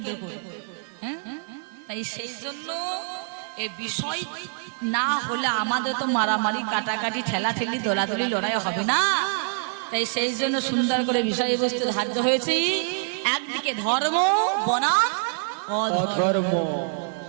করে হ্যাঁ? তাই সেই জন্য এই বিষয় না হলে আমাদের তো মারামারি কাটাকাটি ঠেলাঠেলি দলাদলি লড়াই হবে না তাই সেই জন্য সুন্দর করে বিষয়বস্তু ধার্য হয়েছে একদিকে ধর্ম বনাম ধর্ম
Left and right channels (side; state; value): left; silent; digital silence